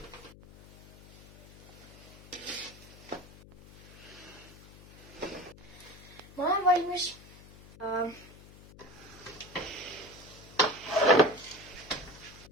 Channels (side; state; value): left; noise; hum, 19 dB below the sound